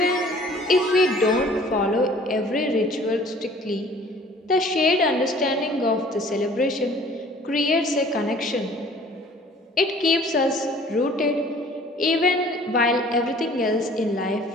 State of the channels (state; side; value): normal; both; correlation 0.51